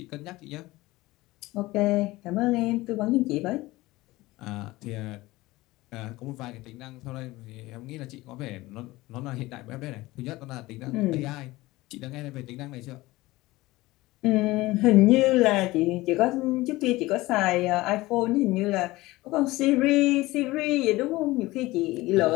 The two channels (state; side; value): quieter; right; 19.4 dB